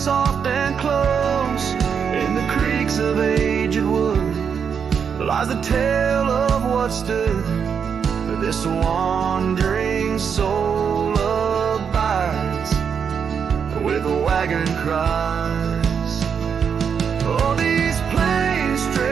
and close. In the creaks of aged wood lies the tale of what stood. This wandering soul abides where the wagon cries. Oh, these plains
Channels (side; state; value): left; quieter; 6.9 dB